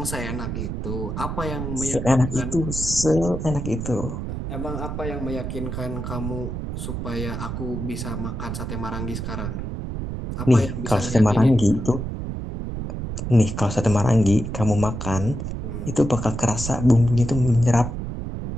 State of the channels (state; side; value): noise; right; rumble, 5 dB below the sound